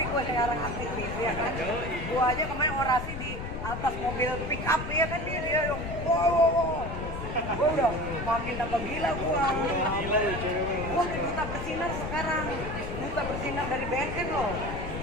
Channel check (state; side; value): noise; left; rumble, 6 dB below the sound